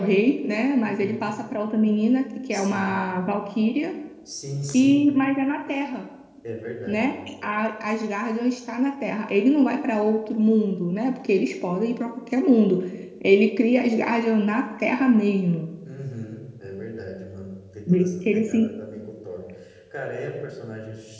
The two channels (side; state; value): both; identical; correlation 1.00